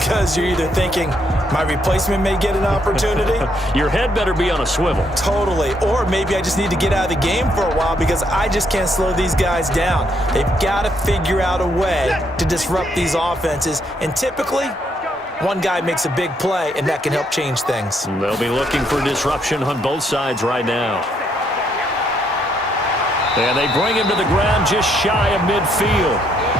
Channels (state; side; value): normal; both; correlation 0.73